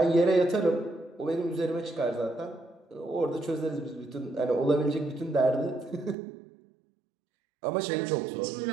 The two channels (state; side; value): drops out; left; at 6.2 s